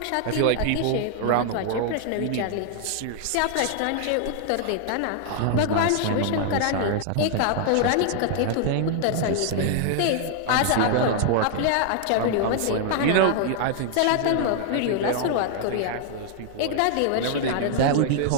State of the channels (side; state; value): both; different; correlation -0.01